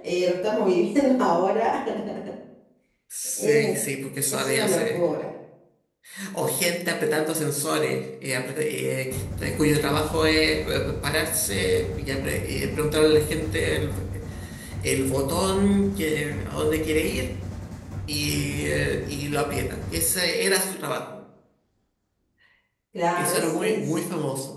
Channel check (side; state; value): both; identical; correlation 1.00